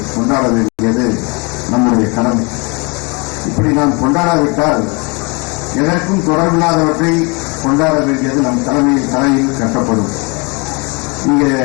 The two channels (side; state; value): right; quieter; 30.3 dB